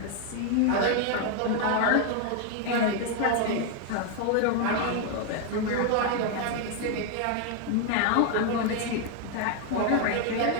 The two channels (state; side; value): different; both; correlation 0.01